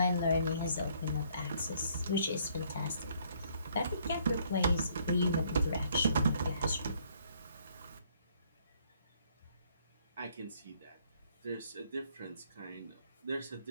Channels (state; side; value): inverted; both; correlation -0.65